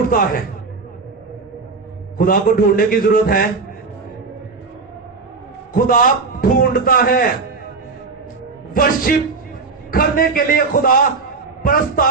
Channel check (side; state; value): left; quieter; 4.4 dB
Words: है, खुदा को ढूंढने की जरूरत है। खुदा ढूंढता है, वर्शिप करने के लिए खुदा